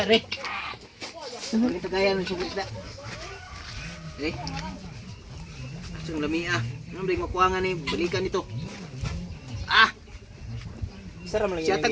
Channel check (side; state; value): both; identical; correlation 1.00